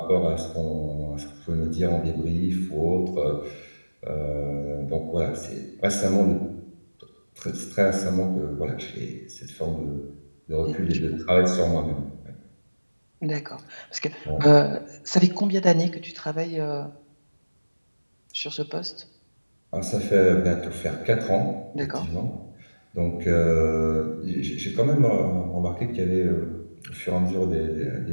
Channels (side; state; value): both; inverted; correlation -1.00